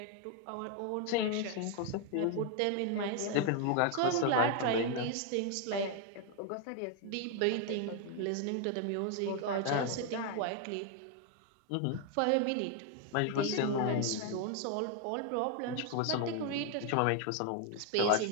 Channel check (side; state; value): both; different; correlation 0.00